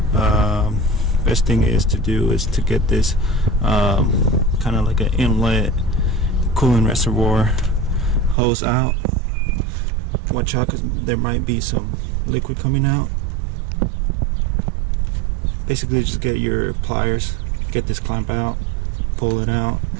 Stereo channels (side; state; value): left; drops out; at 8.3 s